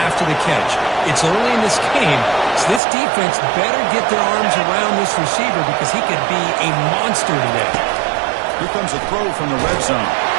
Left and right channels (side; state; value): left; drops out; at 2.8 s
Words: after the catch. It's early in this game, so this defense better get their arms around this receiver because he could be a monster today. Here comes a throw from the red zone.